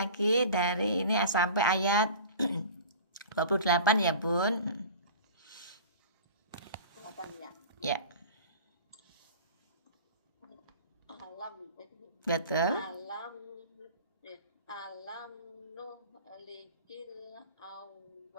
dari ini sampai ayat 28 ya Bun. Ya, Alam betul. alam nuhlikil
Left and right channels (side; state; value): both; inverted; correlation -0.39